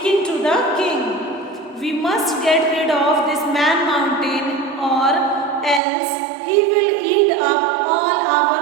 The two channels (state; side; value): drops out; left; at 5.8 s